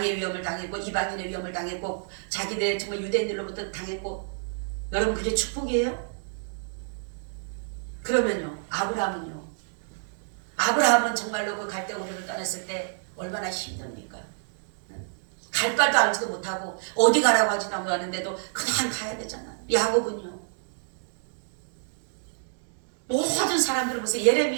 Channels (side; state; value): left; silent; digital silence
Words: 위험을 당했고 이방인의 위험을 당했고 자기들 정말 유대인들로부터 당했고. 여러분, 그게 축복이에요? 그러면요, 아브라함은요? 아브라함은 정말로 그 갈대 우르를 떠났을 때 얼마나 힘듭니까? 갈 바도 알지도 못하고 어디 가라고 하지도 않았는데도 그냥 가야 되잖아. 야곱은요? 모든 사람들을 보세요.